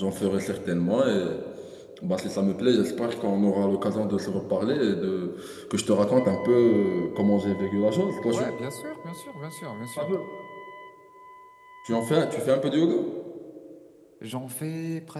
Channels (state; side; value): identical; both; correlation 1.00